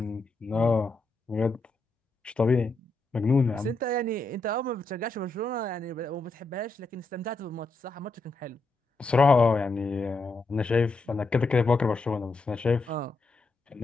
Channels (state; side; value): quieter; right; 3.2 dB